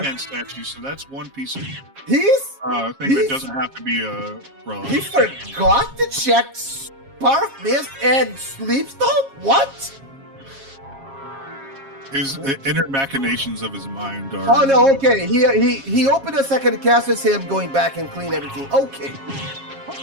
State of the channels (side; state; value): left; late; 7.4 ms